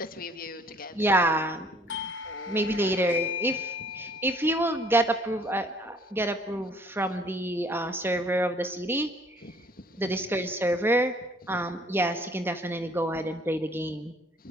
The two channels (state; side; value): normal; both; correlation 0.58